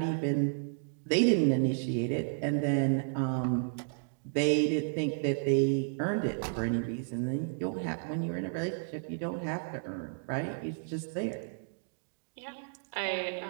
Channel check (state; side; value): silent; left; digital silence